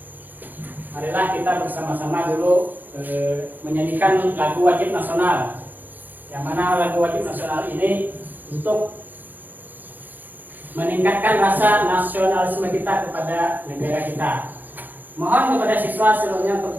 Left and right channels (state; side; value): late; left; 0.086 ms